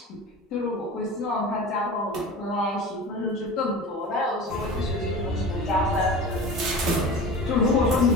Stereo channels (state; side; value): normal; both; correlation 0.34